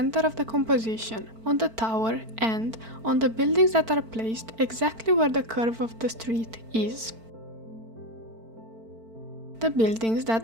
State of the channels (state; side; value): late; left; 4.5 ms